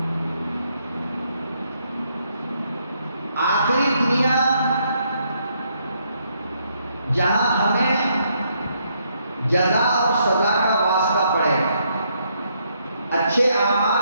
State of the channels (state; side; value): inverted; both; correlation -0.74